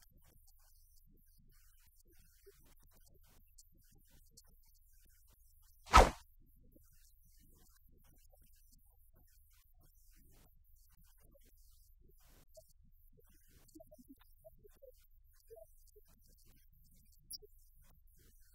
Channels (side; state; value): both; identical; correlation 1.00